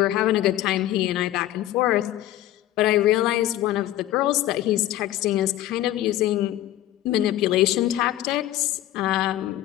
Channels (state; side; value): quieter; right; 14.0 dB